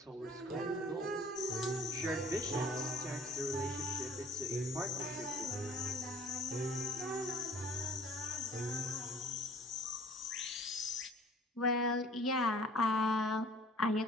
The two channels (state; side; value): normal; both; correlation 0.50